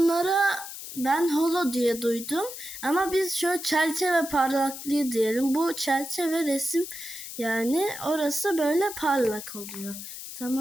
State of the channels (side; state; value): left; noise; hiss, 10 dB below the sound